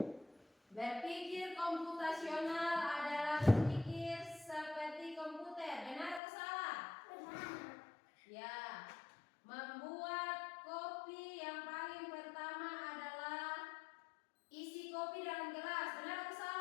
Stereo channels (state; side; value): drops out; right; at 6.2 s